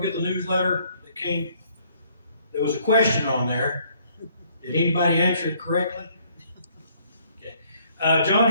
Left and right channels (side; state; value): both; inverted; correlation -0.64